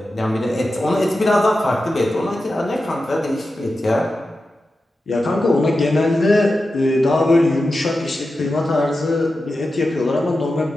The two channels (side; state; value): both; normal; correlation 0.92